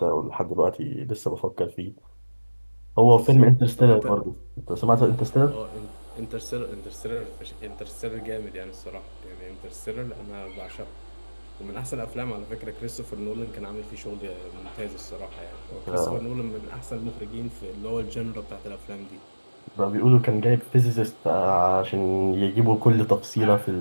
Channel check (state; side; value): inverted; both; correlation -1.00